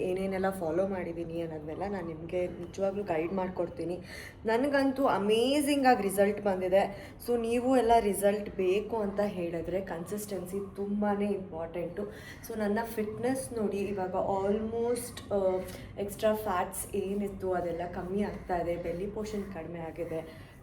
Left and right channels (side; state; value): both; identical; correlation 1.00